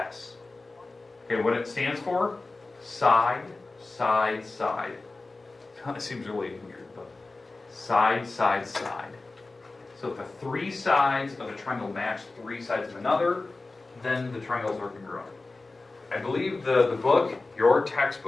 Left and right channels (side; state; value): right; quieter; 3.4 dB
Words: Okay, what it stands for? Side, side, side. Kind of seems really weird, but side, side, side. So if the 3 sides of a triangle match 3 sides of another, then the triangles are congruent. I believe the book, your